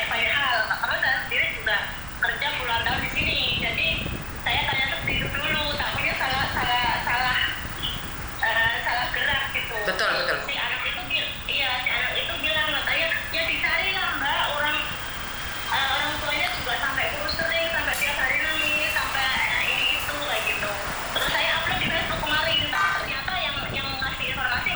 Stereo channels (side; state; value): right; noise; rumble, 13 dB below the sound